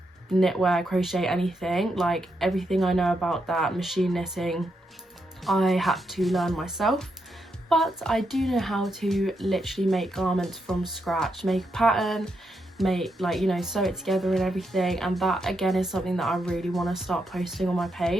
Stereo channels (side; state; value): both; normal; correlation 0.82